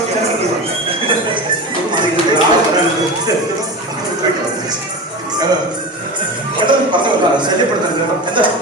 ഒന്നും ശല്യപ്പെടുത്തരുത് കേട്ടോ. എന്താ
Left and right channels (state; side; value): normal; both; correlation 0.27